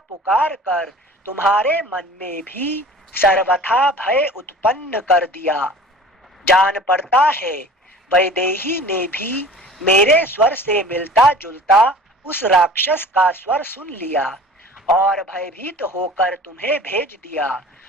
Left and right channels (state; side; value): normal; both; correlation 0.43